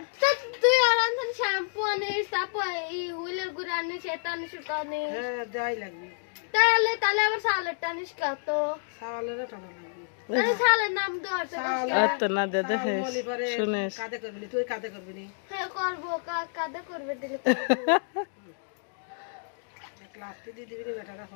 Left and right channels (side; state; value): right; silent; digital silence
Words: তুই আর আনছেন শ্যাম্পু আনিস তারপর এই হুইলের গুড় আনিস এটা আনিস ওটা আনিস হ্যাঁ যাই লাগবে তাহলে আবার সালেরটা আনিস কত সালের টাকা লাগবে আরে সালের নাম দেওয়ার তো না দে দেখে শুনিস কাদে করবি না তুই কাদে করবি না হ্যাঁ করবো কাদা করবে দিলে ক্লাসটি দিয়ে দিবি না টাকা